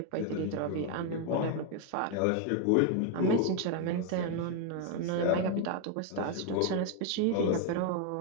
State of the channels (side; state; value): both; different; correlation 0.01